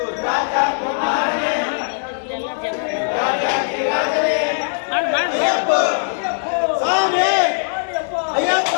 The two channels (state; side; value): silent; right; digital silence